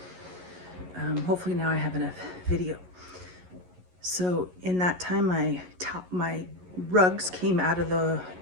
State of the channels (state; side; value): late; left; 11 ms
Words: hopefully now I have enough video. So in that time, my rugs came out of the